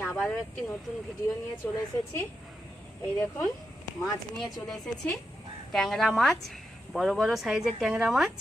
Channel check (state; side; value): normal; both; correlation 0.86